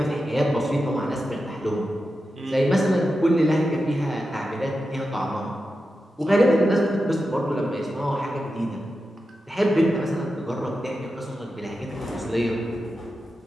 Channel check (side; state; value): both; normal; correlation 0.90